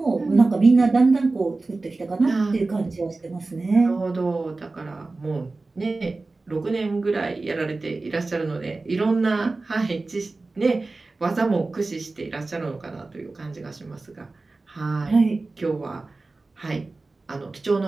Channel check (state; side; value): quieter; left; 3.4 dB